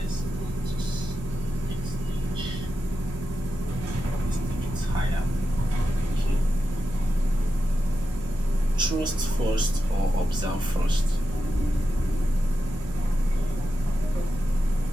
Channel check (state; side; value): normal; both; correlation 0.89